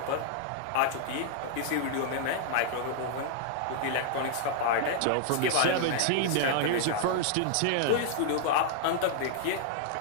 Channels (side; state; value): both; different; correlation -0.01